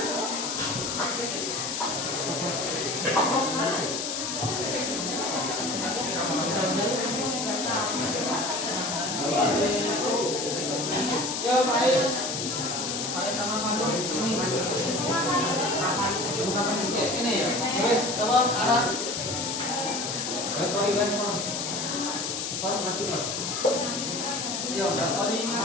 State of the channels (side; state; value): left; noise; hiss, 2 dB below the sound